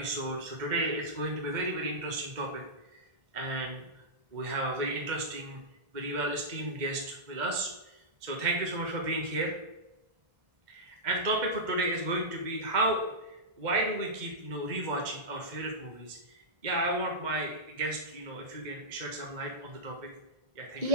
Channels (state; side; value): late; left; 2.1 ms